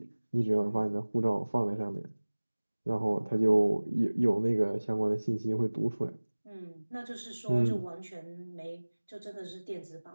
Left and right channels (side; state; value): both; inverted; correlation -1.00